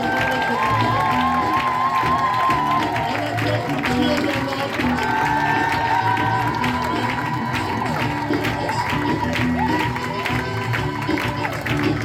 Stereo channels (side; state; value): both; identical; correlation 1.00